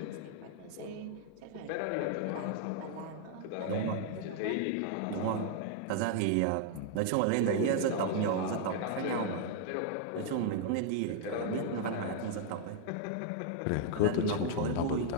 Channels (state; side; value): different; both; correlation -0.01